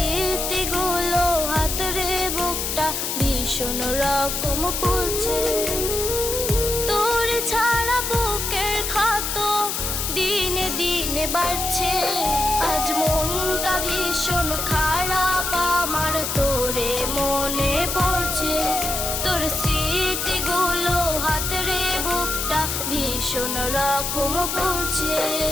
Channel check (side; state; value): left; noise; hiss, 2 dB below the sound